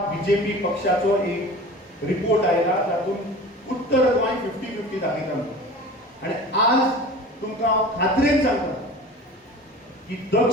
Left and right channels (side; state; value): both; normal; correlation 0.38